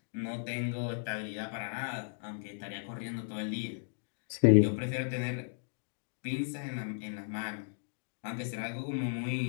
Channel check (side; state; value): right; silent; digital silence